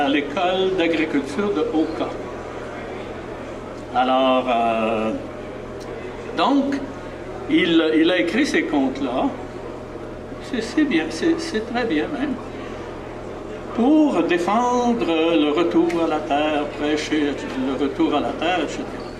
l'école d'agriculture de Oka. Alors, donc, il a écrit ces contes-là. C'est bien, c'est très bien même. Pour défendre le retour à la terre, prêcher le retour à la terre, etc.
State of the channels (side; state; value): both; identical; correlation 1.00